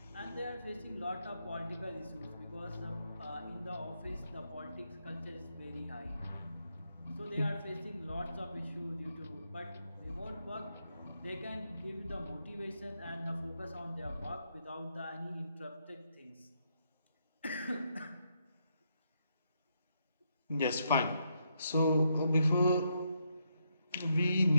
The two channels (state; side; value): inverted; both; correlation -0.79